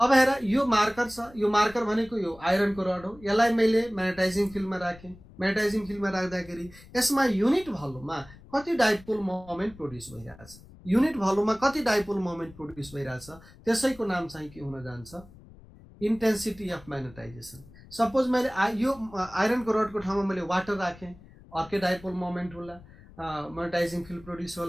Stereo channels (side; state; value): left; noise; rumble, 22 dB below the sound